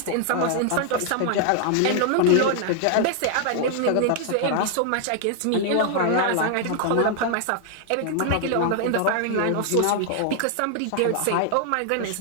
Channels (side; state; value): both; different; correlation 0.00